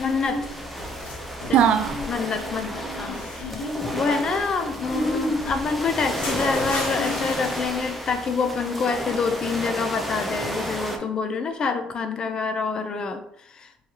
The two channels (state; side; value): normal; both; correlation 0.65